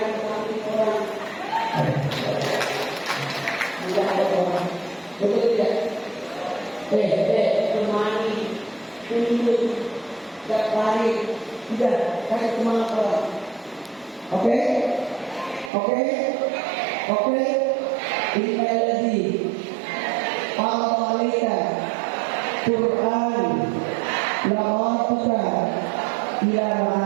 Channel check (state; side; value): drops out; left; at 15.7 s